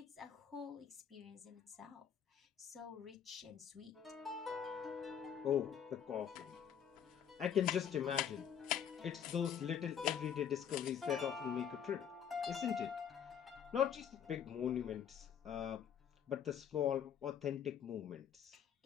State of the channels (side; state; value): right; quieter; 8.5 dB